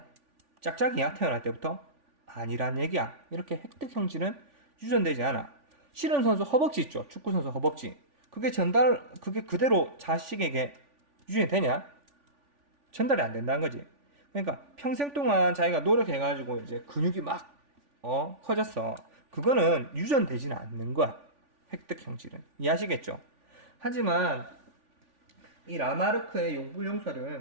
짝짝이야 태어날 때부터? 아니란 얘기야. 이렇게 획득 형질은 유전되지 않아. 씨름선수 허벅지 있죠. 축구선수 허벅지. 그게 그대로 자식에게 유전이 되냐? 전달이 안 된다는 거지. 그러니까 평생 동안 자기가 노력해가지고 이제 근육이 막 커졌어. 그거는 유전되지는 않는 거야. 획득 형질은. 이해하시겠죠? 하지만 이 라마르크의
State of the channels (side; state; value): left; late; 3.5 ms